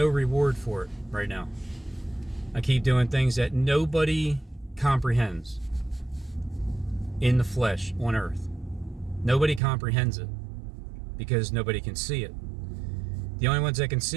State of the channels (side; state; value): left; drops out; at 9.6 s